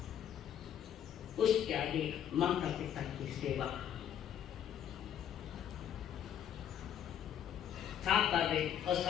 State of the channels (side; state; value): right; quieter; 9.6 dB